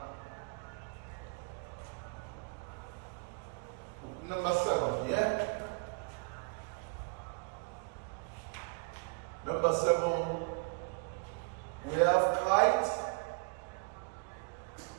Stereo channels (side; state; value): left; quieter; 34.7 dB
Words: number 7 here. Number 7, we have kite,